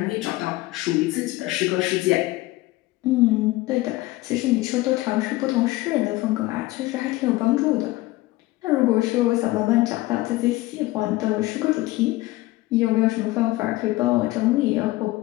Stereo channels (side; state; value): right; quieter; 18.8 dB